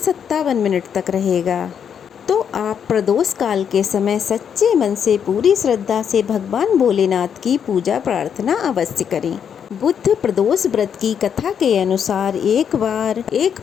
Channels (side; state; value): right; quieter; 7.9 dB